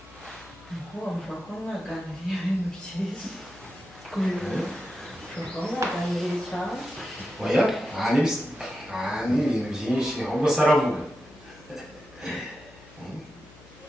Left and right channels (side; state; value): left; noise; hum, 23 dB below the sound